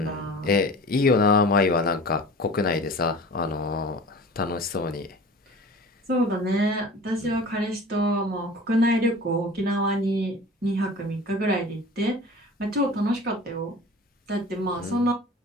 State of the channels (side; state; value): both; normal; correlation 0.40